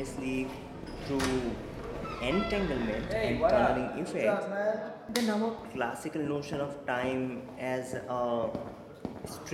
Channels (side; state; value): both; identical; correlation 1.00